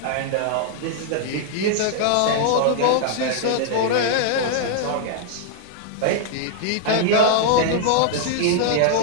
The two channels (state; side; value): different; both; correlation -0.01